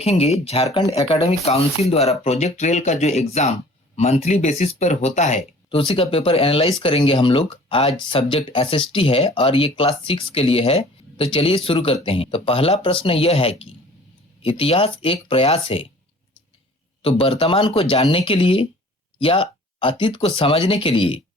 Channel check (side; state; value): both; normal; correlation 0.49